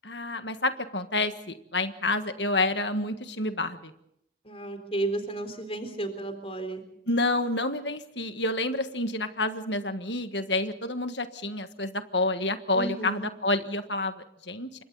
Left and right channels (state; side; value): normal; both; correlation -0.04